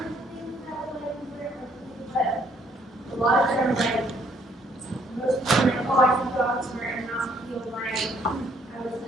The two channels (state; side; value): normal; both; correlation 0.65